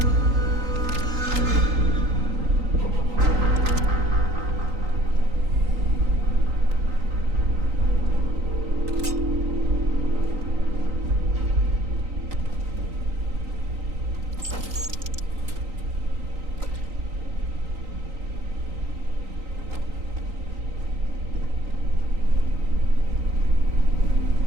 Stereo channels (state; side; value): late; left; 3.9 ms